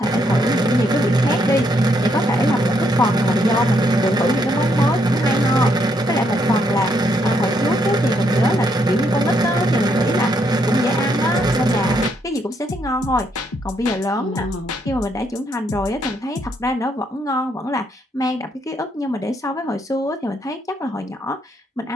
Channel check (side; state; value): both; normal; correlation 0.74